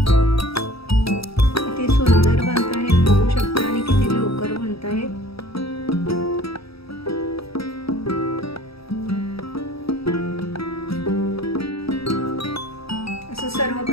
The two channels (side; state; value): right; late; 0.77 ms